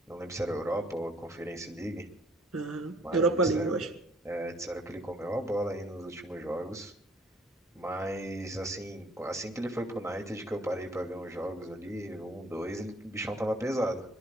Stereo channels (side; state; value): both; normal; correlation 0.58